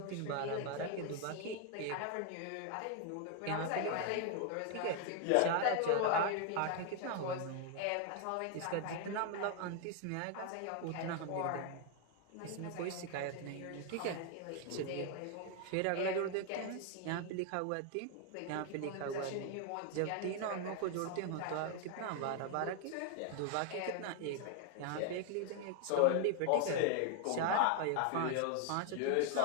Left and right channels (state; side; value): different; both; correlation 0.00